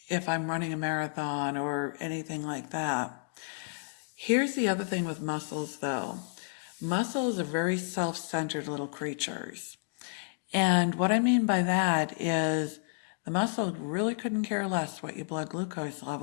if I'm running a marathon or anything like that. Here's the other thing with muscles though. Muscles are very self-centered little creatures. And what I mean by that is the muscle really couldn't care less what your blood glucose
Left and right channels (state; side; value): silent; right; digital silence